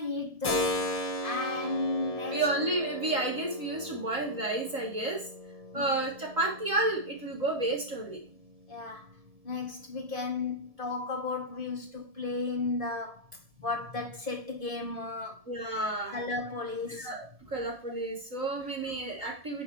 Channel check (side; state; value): left; late; 1.7 ms